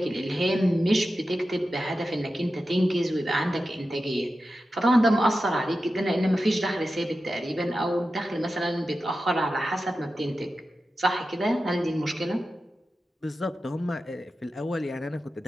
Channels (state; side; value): normal; both; correlation 0.92